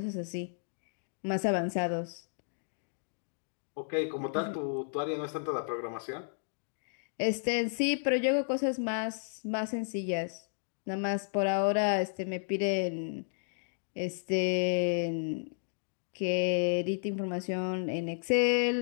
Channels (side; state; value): right; silent; digital silence